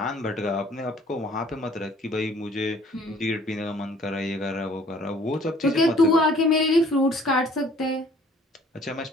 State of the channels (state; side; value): normal; both; correlation 0.56